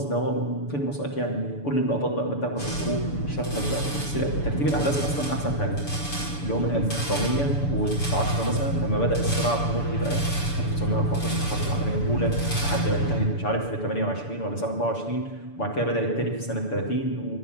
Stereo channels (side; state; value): right; late; 6.9 ms